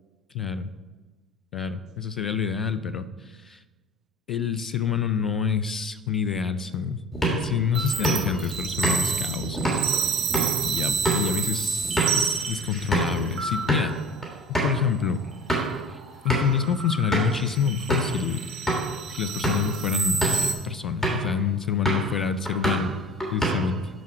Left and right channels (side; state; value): both; normal; correlation 0.40